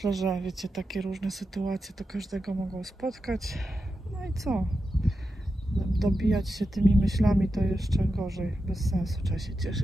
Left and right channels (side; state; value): both; normal; correlation 0.89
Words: że wiecie, takie różne sytuacje to każdego mogą spotkać. No i co? Dobijać się tymi myślami to jeszcze gorzej, bez sensu, trzeba się